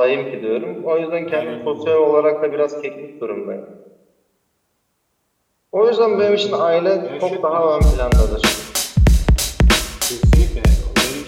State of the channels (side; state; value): both; identical; correlation 1.00